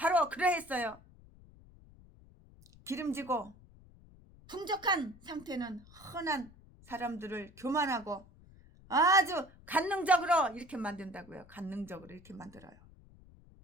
그러했어요. 기름지고 풍족한 상태는 흔한 사람들을 교만하고 아주 간능적으로 이렇게 만든다고요. 간능적으로 이렇게 만들어요.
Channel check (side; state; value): left; noise; rumble, 23 dB below the sound